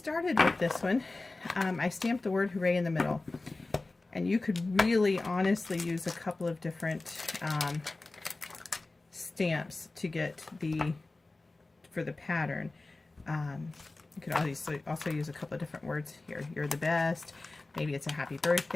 with this one, I stamped the word hooray in the middle. And you could really honestly use a couple of different stamps to get for the pattern. You could also use a couple of different words here. You're the best. Maybe it's a happy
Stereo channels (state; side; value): quieter; right; 3.2 dB